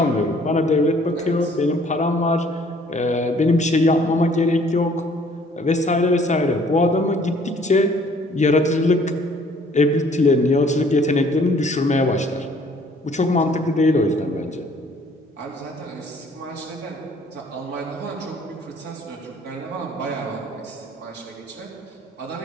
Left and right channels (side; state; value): both; normal; correlation 0.58